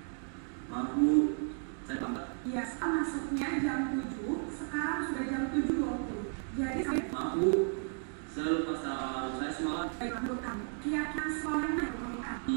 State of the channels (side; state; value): left; silent; 55 dB below the other